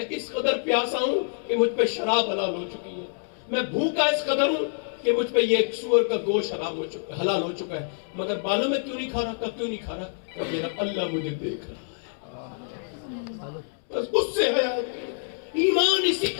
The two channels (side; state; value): right; silent; digital silence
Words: اس قدر پیاسا ہوں کہ مجھ پہ شراب حلال ہو چکی ہے, میں بھوکا اس قدر ہوں کہ مجھ پہ یہ سور کا گوشت حلال ہو چکا ہے, مگر معلوم میں کیوں نہیں کھا رہا, کیوں نہیں کھا رہا, کہ میرا اللہ مجھے دیکھ رہا ہے. بس اس سے ہے ایمان اسی